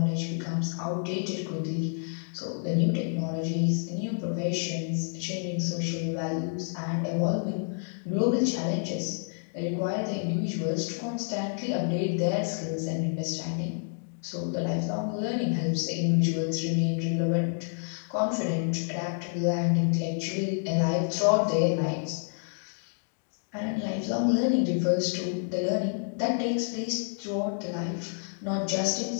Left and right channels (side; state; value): right; silent; 59 dB below the other